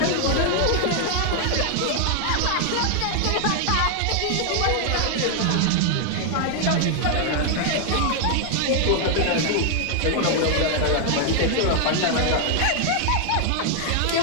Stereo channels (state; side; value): different; both; correlation 0.00